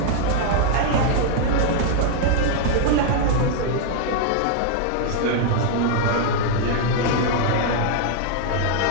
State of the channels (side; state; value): both; different; correlation -0.01